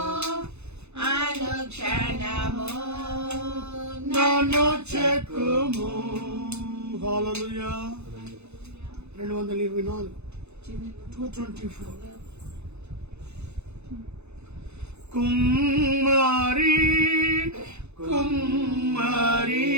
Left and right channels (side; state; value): left; late; 0.81 ms